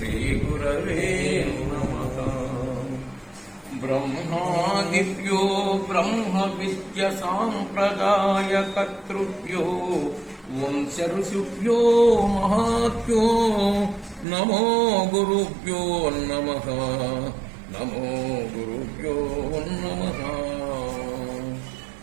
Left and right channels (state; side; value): drops out; left; at 14.2 s